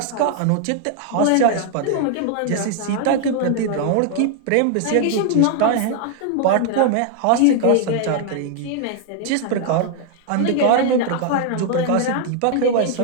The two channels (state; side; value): different; both; correlation 0.00